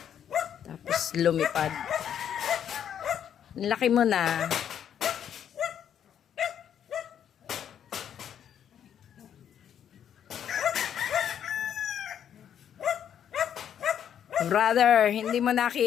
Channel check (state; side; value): quieter; right; 9.2 dB